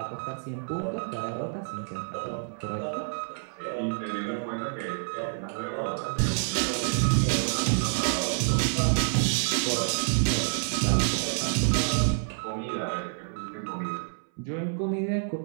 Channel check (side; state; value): left; silent; 59 dB below the other